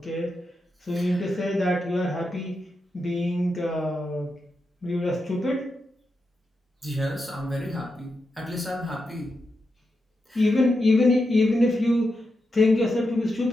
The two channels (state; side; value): normal; both; correlation 0.87